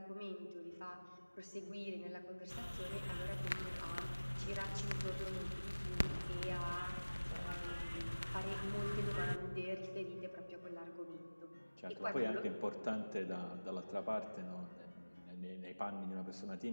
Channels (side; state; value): both; inverted; correlation -1.00